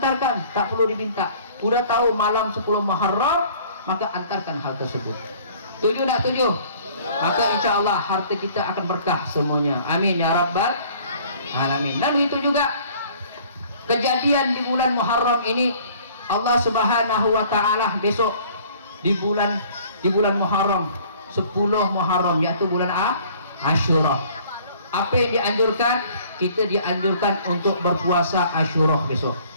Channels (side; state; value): both; inverted; correlation -0.54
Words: tak perlu diminta. Udah tahu malam 10 Muharram, maka antarkan hal tersebut. Setuju tak? Setuju? Maka insya Allah harta kita akan berkah semuanya. Amin ya rabbal alamin. Dan itu juga kejadian di bulan Muharram ini, Allah Subhanahu wa taala besok di bulan Muharram 10 Muharram, yaitu bulan Asyura. Apa yang dianjurkan? Kita dianjurkan untuk berpuasa Asyura besok.